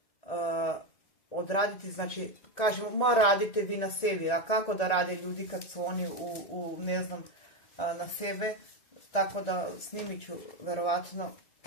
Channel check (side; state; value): right; late; 1.9 ms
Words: odraditi, znači, kažemo, ma radite vi na sebi, a kako da rade ljudi kad su oni ne znam, na sebe, tako da snimit ću verovatno